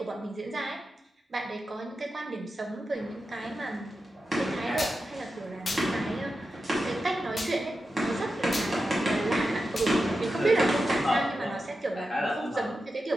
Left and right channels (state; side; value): normal; both; correlation 0.90